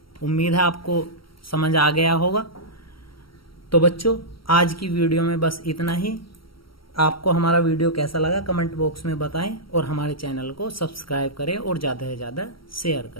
उम्मीद है आपको समझ आ गया होगा। तो बच्चों आज की वीडियो में बस इतना ही। आपको हमारा वीडियो कैसा लगा कमेंट बॉक्स में बताएं और हमारे चैनल को सब्सक्राइब करें और ज़्यादा से ज़्यादा शेयर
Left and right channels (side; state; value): right; late; 0.74 ms